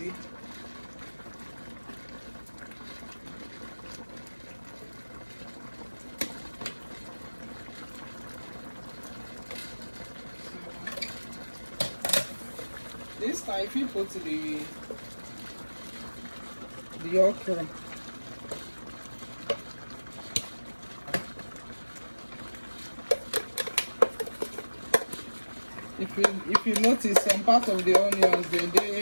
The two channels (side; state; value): both; inverted; correlation -1.00